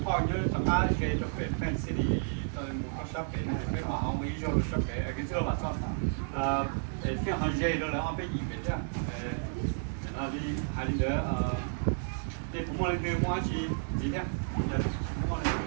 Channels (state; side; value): silent; left; digital silence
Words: hình như tụi ta cái chụp cái fancy đi tụi một shop cái này cái họ không ý rồi shop cái sau là sao cái hàng dây đó là họ bị gì vậy chứ là đi hay đi nữa để cũng muốn cái mua gì nhá giờ cũng muốn